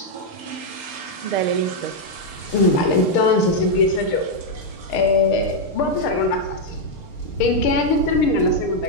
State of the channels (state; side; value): late; right; 6.6 ms